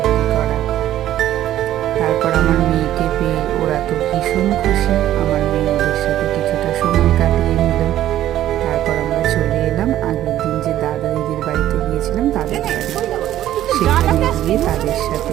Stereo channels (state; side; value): quieter; left; 12.8 dB